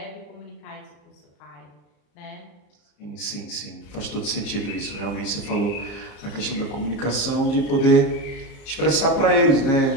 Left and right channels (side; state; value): right; late; 34 ms